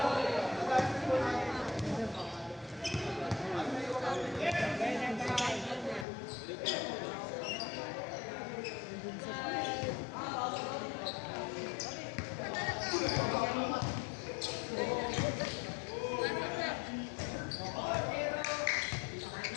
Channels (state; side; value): drops out; right; at 6.1 s